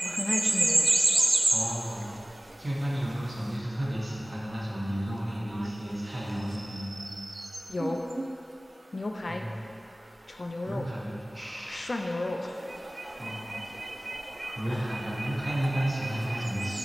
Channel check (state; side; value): normal; both; correlation 0.97